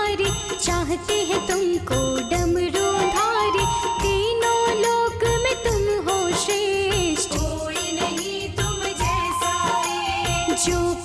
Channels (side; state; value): both; identical; correlation 1.00